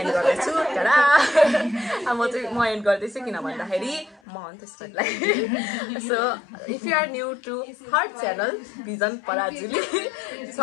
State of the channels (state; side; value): drops out; right; at 4.2 s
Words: गर्दैछु टाडा म एन्ड गर्दैछु किन भन्दाखेरि म हो त्यसलाई so if you are new to her channel Vision Parajuli